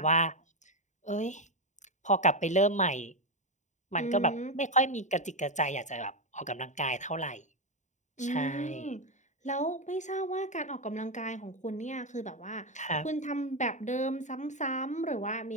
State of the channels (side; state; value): right; late; 0.35 ms